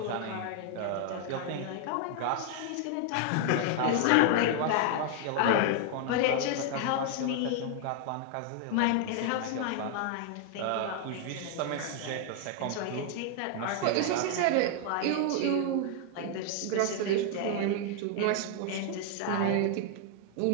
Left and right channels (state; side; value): different; both; correlation 0.00